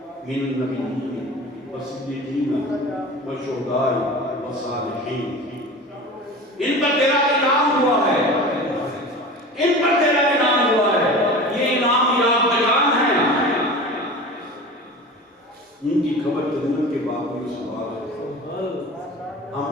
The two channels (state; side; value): normal; both; correlation 0.35